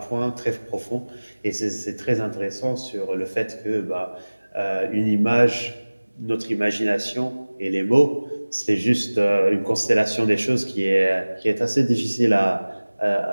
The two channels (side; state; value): both; inverted; correlation -1.00